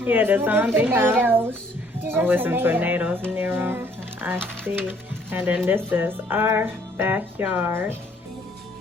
the zombie house. Oh, with some tornadoes near them. I see. And then this is our backyard.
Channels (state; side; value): normal; both; correlation 0.62